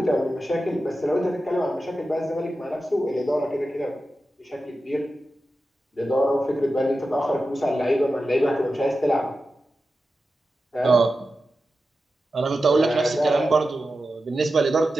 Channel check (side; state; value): both; normal; correlation 0.92